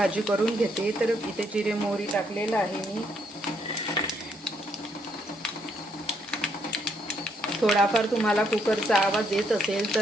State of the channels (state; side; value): normal; both; correlation 0.72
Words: करून घेते. तर इथे जिरे मोहरी टाकलेलं आहे मी. थोडाफार तुम्हाला कुकरचा आवाज येत असेल